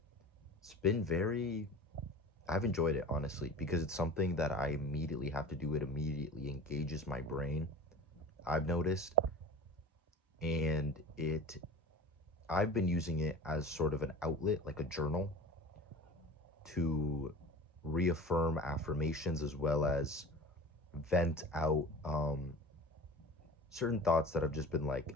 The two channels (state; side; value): normal; both; correlation 0.36